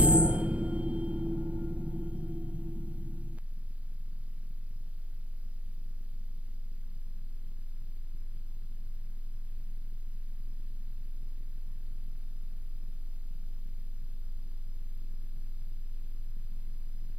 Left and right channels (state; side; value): late; left; 0.064 ms